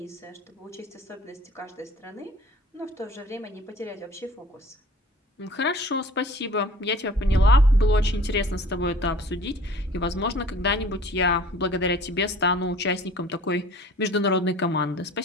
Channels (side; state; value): both; normal; correlation 0.48